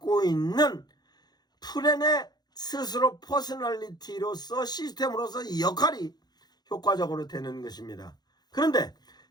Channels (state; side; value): late; right; 0.20 ms